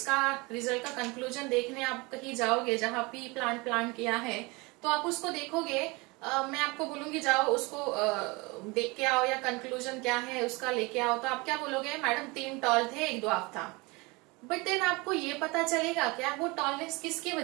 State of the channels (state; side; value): quieter; left; 25.6 dB